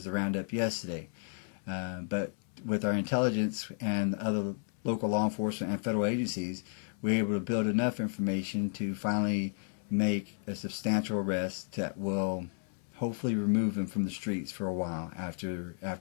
the roundup yesterday. But with our intelligence and other local law enforcement and federal agencies, we were able to build enough information to finally make a substantial arrest that will hopefully remove them from the streets for a while after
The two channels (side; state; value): right; silent; 56 dB below the other